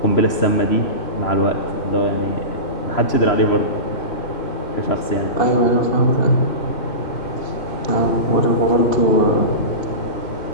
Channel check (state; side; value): late; right; 3.0 ms